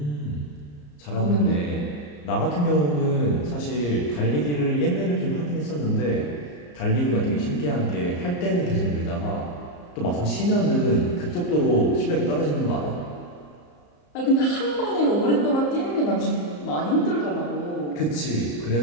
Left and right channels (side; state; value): right; late; 34 ms